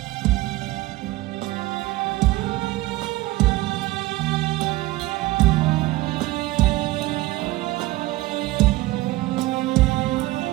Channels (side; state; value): left; quieter; 18.3 dB